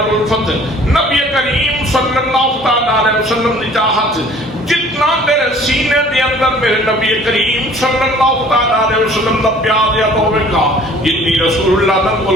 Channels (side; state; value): both; normal; correlation 0.52